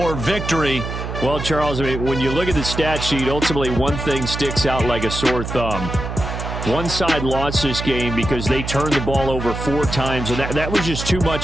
victory. Well, Charles, I mean, when you look at the stat sheet, ultimately one thing sticks out like a sore thumb. One side lost this game because they turned the ball over 4 times, and that was just too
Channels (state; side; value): noise; right; hum, 6 dB below the sound